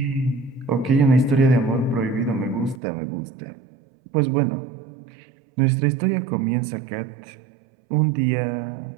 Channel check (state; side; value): drops out; left; at 2.8 s